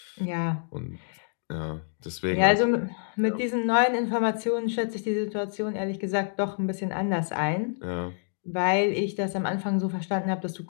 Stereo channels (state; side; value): silent; right; digital silence